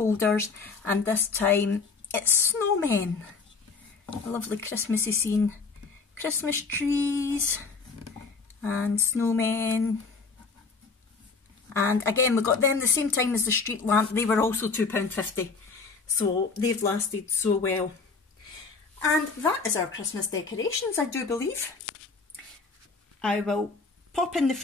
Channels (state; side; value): quieter; right; 4.5 dB